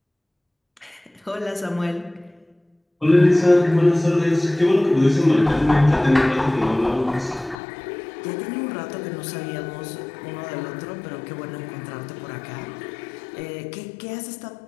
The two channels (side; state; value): right; drops out; at 7.6 s